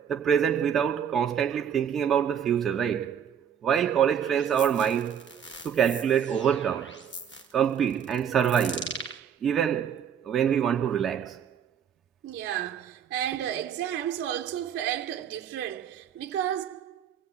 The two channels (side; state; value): left; quieter; 8.4 dB